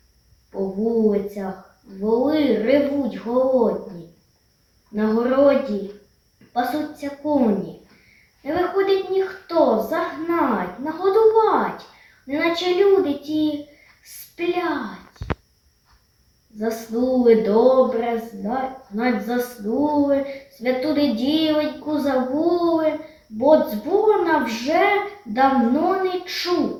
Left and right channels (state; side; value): identical; both; correlation 1.00